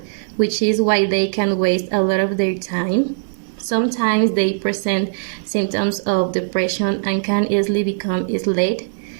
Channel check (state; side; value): silent; left; 58 dB below the other